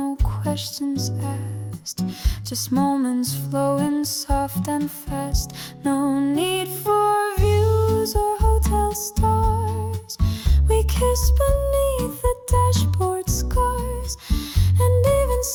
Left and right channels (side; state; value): both; identical; correlation 1.00